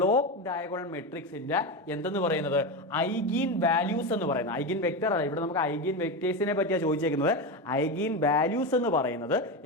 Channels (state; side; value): normal; both; correlation 0.17